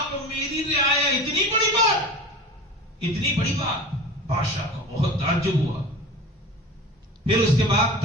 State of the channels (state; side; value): normal; both; correlation 0.36